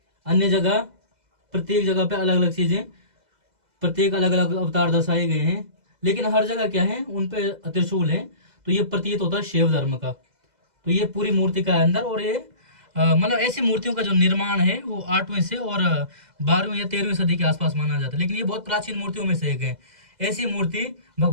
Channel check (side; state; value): left; late; 2.0 ms